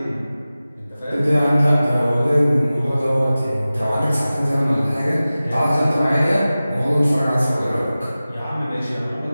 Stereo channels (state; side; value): inverted; both; correlation -0.96